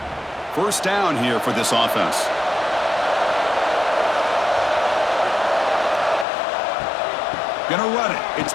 First down here for this offense. Gonna run it. It's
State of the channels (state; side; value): drops out; right; at 6.2 s